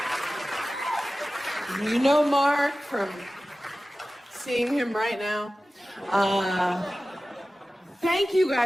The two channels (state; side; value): normal; both; correlation 0.96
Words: You know Mark from seeing him right now. Thank you